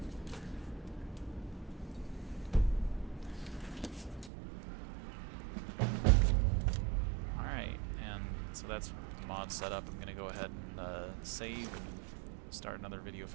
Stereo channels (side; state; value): left; drops out; at 4.3 s